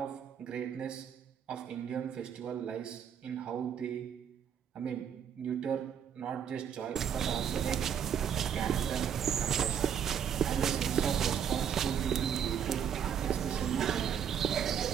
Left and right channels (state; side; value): quieter; left; 8.4 dB